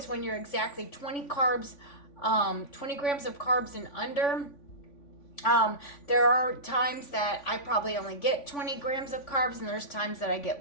when you're exactly 20 grams of carbs and under. There are times that I probably only get 20 grams of carbs, and there's times that I get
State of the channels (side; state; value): right; late; 3.5 ms